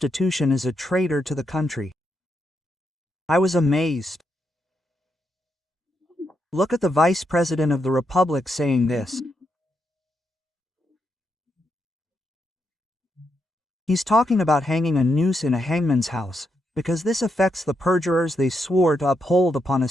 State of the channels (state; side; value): normal; both; correlation 0.81